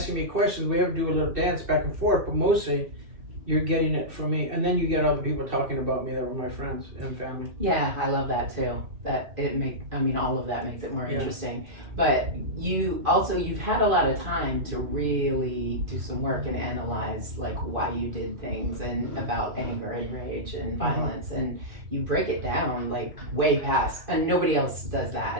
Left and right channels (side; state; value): left; late; 2.4 ms